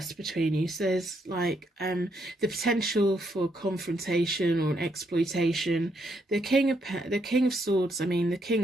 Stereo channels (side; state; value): both; normal; correlation 0.76